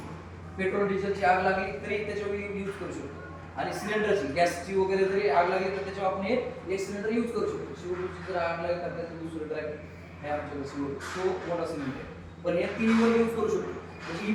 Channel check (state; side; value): identical; both; correlation 1.00